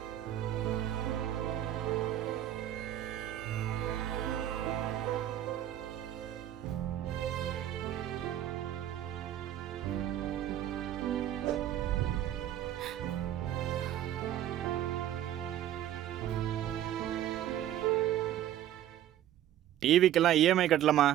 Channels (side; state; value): left; quieter; 12.0 dB